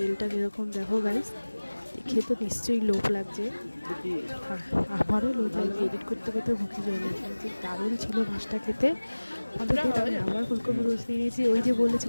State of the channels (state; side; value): inverted; both; correlation -1.00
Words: কীরকম দেখো গাইস, দেখে তো নিশ্চয়ই লোভ লাগছে। আমারও লোভ লাগছে, এডিট করতে করতে মুখে জল এসেছে। দারুণ ছিল মাছটা খেতে। অন্তত আমি আবার ফুলকপি রোস্ট নিয়ে নিয়েছি। ওই যে